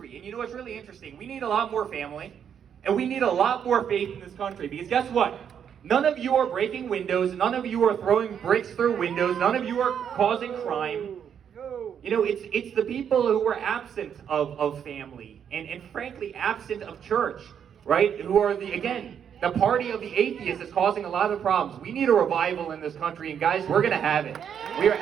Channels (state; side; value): quieter; left; 8.3 dB